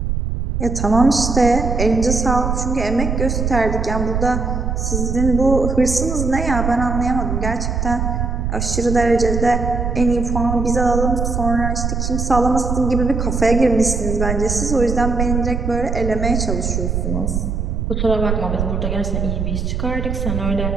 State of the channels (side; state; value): right; noise; rumble, 1 dB below the sound